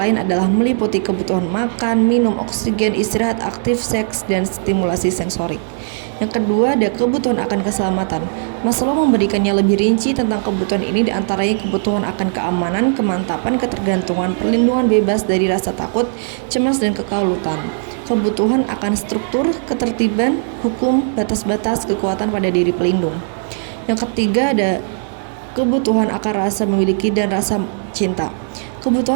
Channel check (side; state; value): left; silent; digital silence